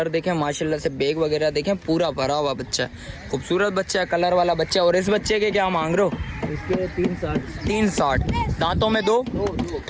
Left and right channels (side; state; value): both; identical; correlation 1.00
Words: देखें माशाल्लाह से, बैग वगैरह देखें, पूरा भरा हुआ बच्चा है, खूबसूरत बच्चा है, कलर वाला बच्चा। और इस बच्चे के क्या मांग रहे हो? इसके 360 दांतों में 2।